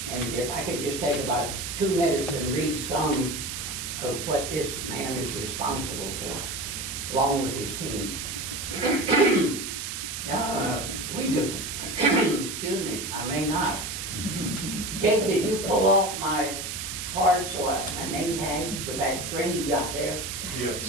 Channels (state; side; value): noise; right; hiss, 5 dB below the sound